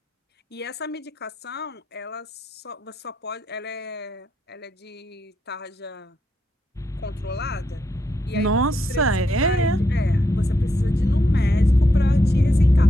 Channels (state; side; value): normal; both; correlation 0.81